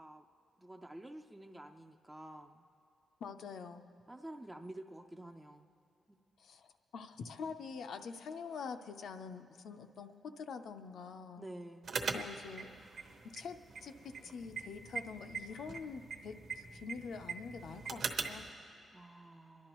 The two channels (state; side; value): normal; both; correlation 0.76